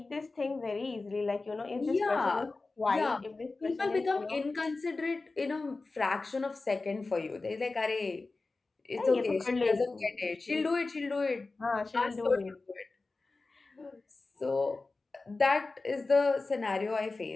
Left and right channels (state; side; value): quieter; right; 3.6 dB